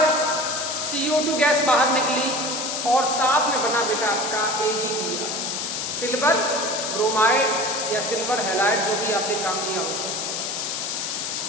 CO2 गैस बाहर निकली और साथ में बना बेटा आपका AgBr सिल्वर ब्रोमाइड या सिल्वर हैलाइड जो भी आपने काम लिया होगा।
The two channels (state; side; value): noise; left; hiss, 3 dB below the sound